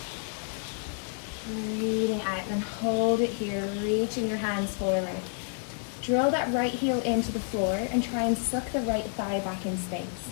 Breathing out, then hold it here, reaching your hands forward. Drill that right heel into the floor and try and suck the right thigh back in space.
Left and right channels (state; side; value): silent; right; 58 dB below the other